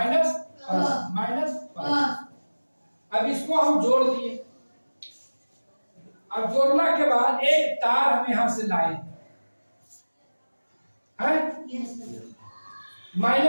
प्लस माइनस प्लस। अब इसको हम जोड़ दिए। अब जोड़ने के बाद एक तार हम यहां से लाए हैं,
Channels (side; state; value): both; inverted; correlation -1.00